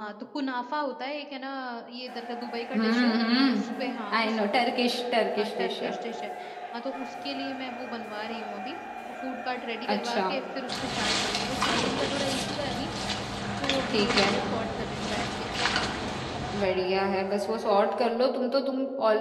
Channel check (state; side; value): identical; both; correlation 1.00